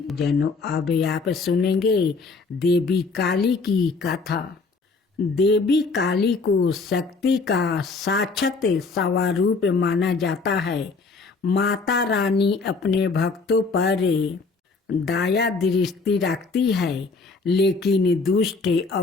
जनों, अब आप सुनेंगे देवी काली की कथा। देवी काली को शक्ति का साक्षात स्वरूप माना जाता है। माता रानी अपने भक्तों पर दया दृष्टि रखती है, लेकिन दुष्ट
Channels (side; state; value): right; quieter; 4.1 dB